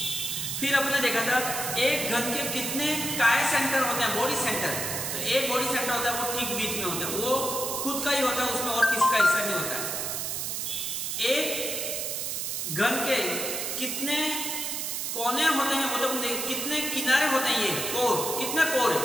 फिर आपने देखा था एक घन के कितने काय सेंटर होते हैं, बॉडी सेंटर। तो एक बॉडी सेंटर होता है वो ठीक बीच में होता है, वो खुद का ही होता है, उसमें और किसी का हिस्सा नहीं होता है। एक घन के कितने कोने होते हैं, मतलब कितने किनारे होते हैं, ये कोर, कितने कोर है,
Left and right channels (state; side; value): noise; right; hiss, 2 dB below the sound